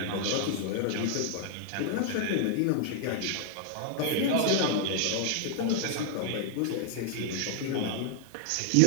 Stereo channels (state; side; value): different; both; correlation 0.00